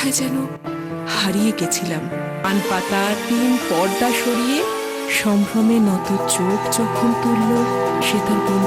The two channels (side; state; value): both; identical; correlation 1.00